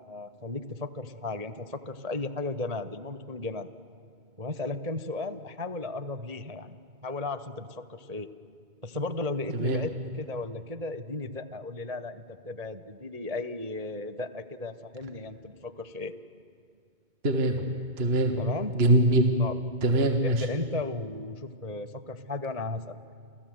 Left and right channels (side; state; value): left; late; 2.2 ms